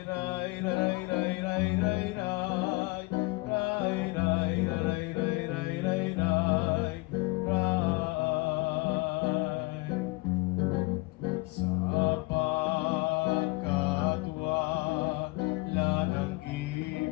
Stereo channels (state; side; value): quieter; right; 23.6 dB